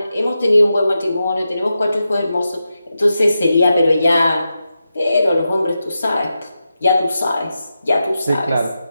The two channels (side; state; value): both; inverted; correlation -0.90